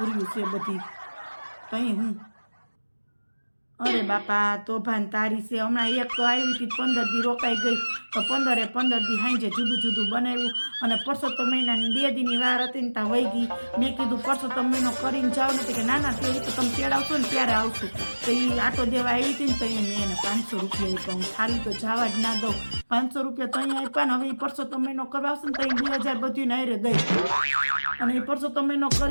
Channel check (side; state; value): both; inverted; correlation -1.00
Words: છે બધી. કંઈ હું અરે બાપા, તોભાન તારી છે. હમણાં એક તો આવી હતી 15 દી રોકાઈ ગઈ, તો 15 દી હાંજે જુદું જુદું બનાવ્યું. અને પરસોત્તમ મહિનાની 2 દીની વાર હતી ને ત્યાં વહી ગઈ. મેં કીધું પરસોત્તમ મહિનો કરીને જાવ નથી કે ના તે તો તમે તેડાવશો ને ત્યારે આવશું. તો એ આટો દેવા આવી હતી ને તો મેં એને 500 રૂપિયા આપ્યા. હું ખાલી તો જવા જ ના દઉં. 500 રૂપિયા તો અહીંયા આપ્યા ને. હવે એ પરસોત્તમ મહિનો કરવા આવશે ને તો 2,000 બધું નાયરે દઈ. અને એ પરસોત્તમ મહિનો